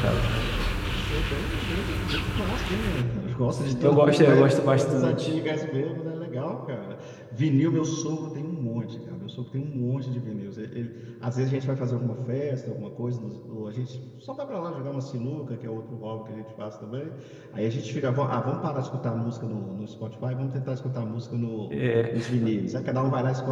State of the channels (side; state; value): both; identical; correlation 1.00